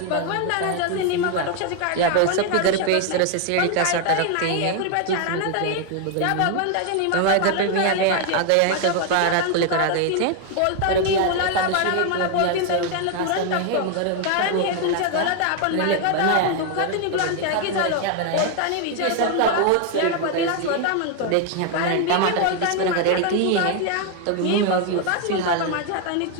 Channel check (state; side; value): different; both; correlation 0.01